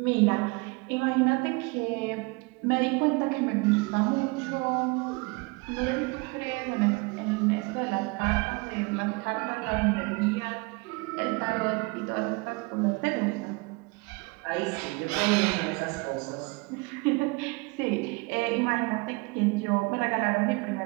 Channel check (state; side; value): quieter; left; 27.3 dB